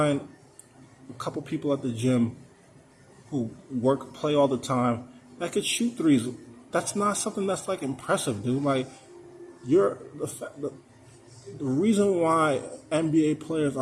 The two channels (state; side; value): identical; both; correlation 1.00